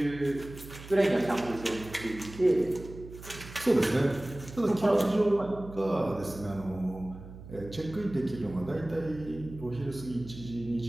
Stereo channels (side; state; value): right; noise; hum, 15 dB below the sound